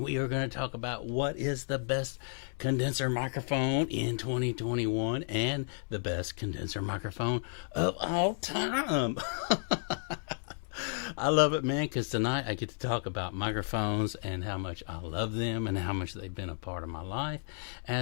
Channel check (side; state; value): right; silent; digital silence